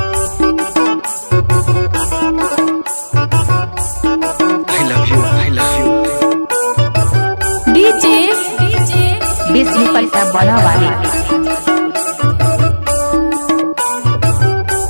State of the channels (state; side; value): inverted; both; correlation -1.00